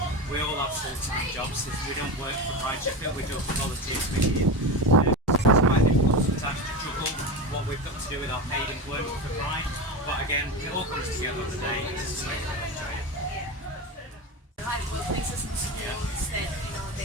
We all have full-time jobs. We don't work for Pride Sheffield, we do a volunteer committee. It's quite difficult sometimes to juggle what we've got to do with our paid employment for Pride. But again, it all comes together on the day. It's just like really enjoy it. Yeah. Like workplaces and schools that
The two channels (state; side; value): normal; both; correlation 0.22